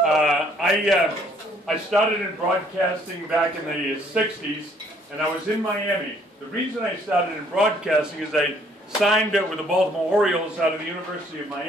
I started in broadcasting back in the 60s, and I was in Miami. The reason I started in broadcasting is I signed with the Baltimore Orioles out of the University of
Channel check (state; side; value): normal; both; correlation 0.63